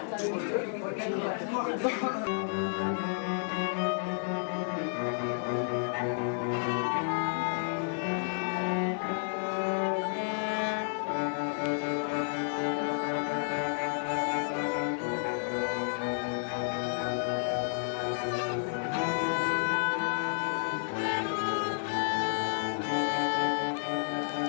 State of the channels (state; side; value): silent; right; 57 dB below the other